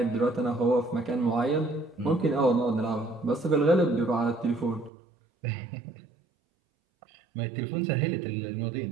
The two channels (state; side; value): drops out; left; at 4.9 s